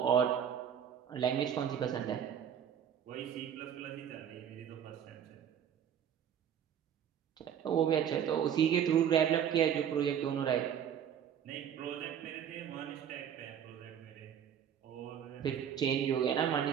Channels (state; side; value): quieter; left; 8.9 dB